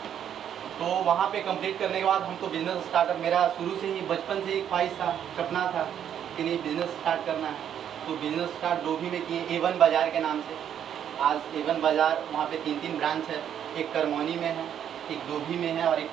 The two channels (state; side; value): quieter; left; 9.4 dB